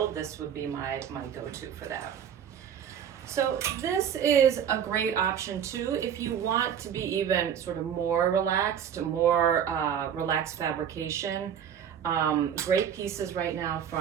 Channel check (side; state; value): left; quieter; 8.7 dB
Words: this would be my go-to for that. So this is a great option too if you want to be even sort of more relaxed, relaxed fabrication. Great pieces right now